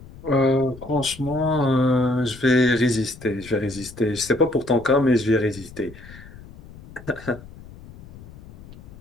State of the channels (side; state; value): left; noise; rumble, 18 dB below the sound